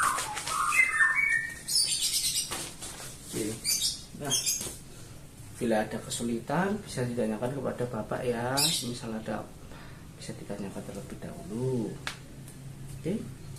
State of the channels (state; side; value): identical; both; correlation 1.00